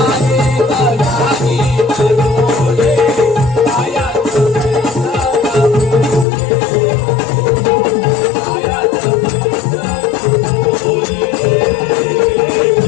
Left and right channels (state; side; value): drops out; right; at 6.2 s